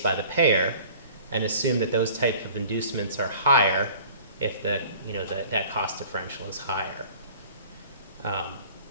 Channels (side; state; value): both; inverted; correlation -0.48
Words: by the payer and assume that those types of inducements are higher if that cost differential is higher.